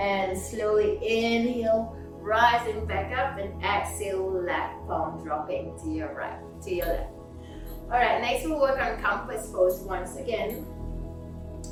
slowly inhale, rising back up, and exhale, left palm dropping to your right, to your left. All right, next we'll work on compass pose once again.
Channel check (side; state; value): both; identical; correlation 1.00